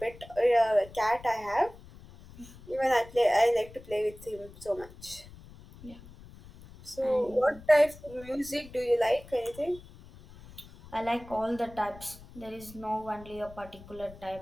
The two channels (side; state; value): left; noise; rumble, 19 dB below the sound